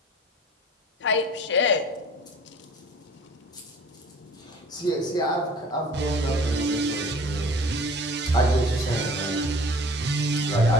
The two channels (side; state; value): both; normal; correlation 0.47